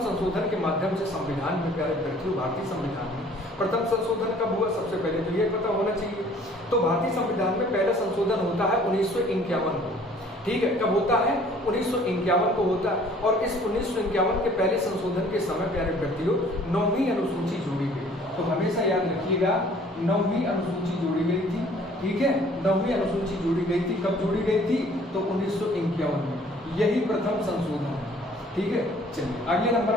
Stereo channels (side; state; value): both; normal; correlation 0.55